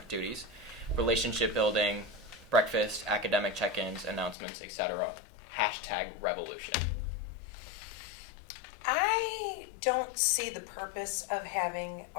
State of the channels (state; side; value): drops out; right; at 4.4 s